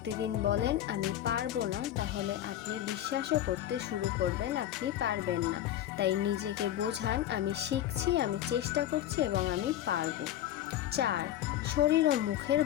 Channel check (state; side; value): quieter; right; 12.2 dB